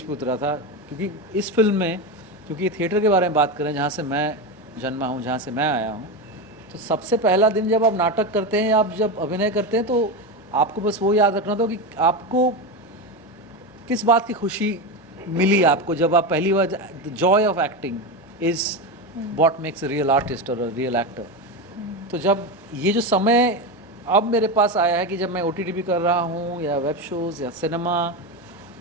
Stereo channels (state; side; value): normal; both; correlation 0.16